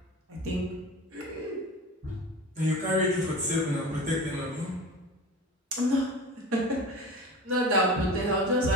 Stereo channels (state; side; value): normal; both; correlation 0.34